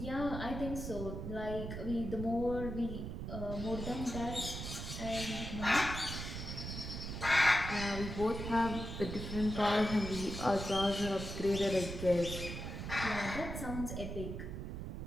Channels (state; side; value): noise; right; rumble, 6 dB below the sound